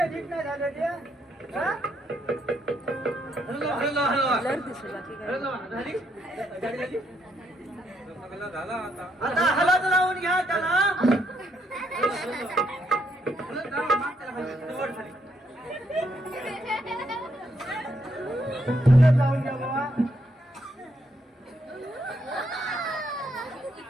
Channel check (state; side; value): normal; both; correlation 0.75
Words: नीट नाही झालं ते? हा? हॅलो ब्लर दिसलं बाकी काय झाली गाडी झाली झाला आता. आता हलत लावून घ्या त्याला. हलत लावा, माग त्याला खाली. वर खाली. हलत लावून घ्या बाबा.